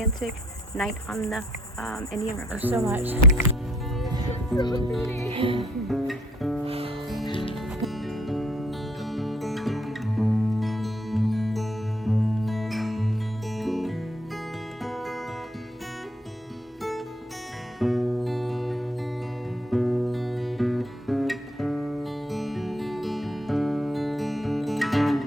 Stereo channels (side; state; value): both; normal; correlation 0.63